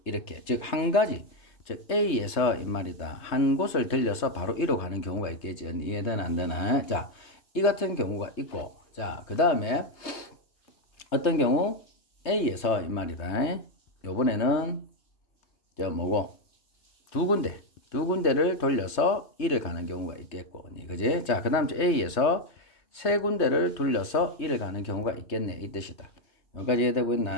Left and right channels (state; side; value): late; right; 3.3 ms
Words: 이렇게 즉 한 가지 즉 A에서 이 말이다. 한 곳을 들려서 바로 E로 가는 경우가 있겠지. 이해되나 안 되나? 자, 이 같은 경우가 있고 자, 그 다음에 어떤 경우 A에서 이 말이다. 요번에는 저 뭐고 두 군데를 돌려서 E를 가는 경우가 있겠고 그지? 자, 그 다음 A에서 세 군데를 돌려서 E를 가는 경우가 있겠네 이 뜻이다. 여기까지 이해되고